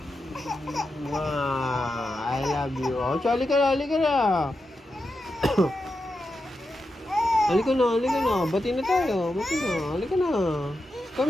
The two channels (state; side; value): normal; both; correlation 0.88